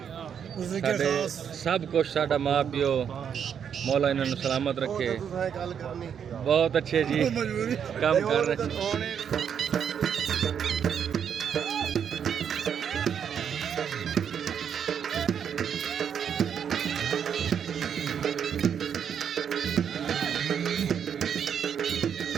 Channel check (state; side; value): quieter; left; 8.0 dB